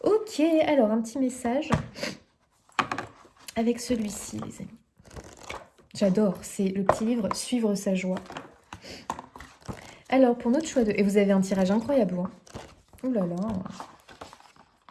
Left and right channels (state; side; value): identical; both; correlation 1.00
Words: Ok, alors un petit message avec celui-ci, les amis. J'adore, c'est le petit livre « Suivre sa joie ». Alors, pour notre choix de... Et vous avez un tirage incroyable, hein. Ouh là là.